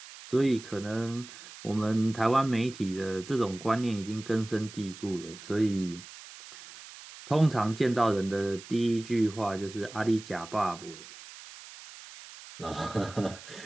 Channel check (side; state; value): right; noise; hiss, 16 dB below the sound